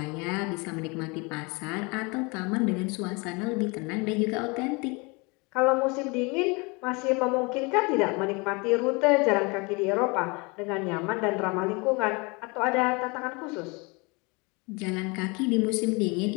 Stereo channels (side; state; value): right; quieter; 28.4 dB